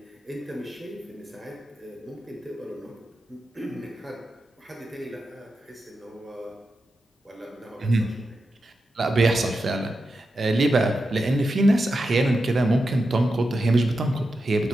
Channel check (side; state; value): both; normal; correlation 0.89